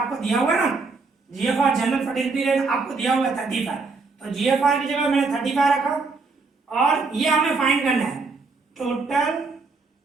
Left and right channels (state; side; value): quieter; left; 4.2 dB